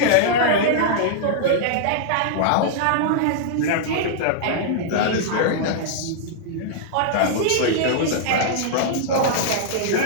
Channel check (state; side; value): different; both; correlation -0.01